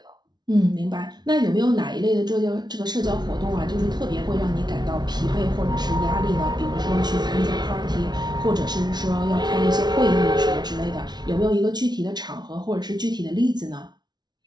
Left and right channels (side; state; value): left; late; 0.20 ms